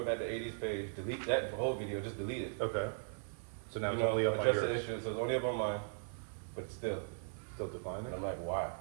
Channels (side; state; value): left; silent; digital silence